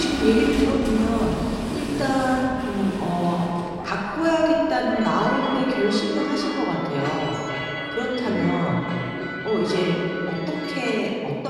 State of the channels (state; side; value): identical; both; correlation 1.00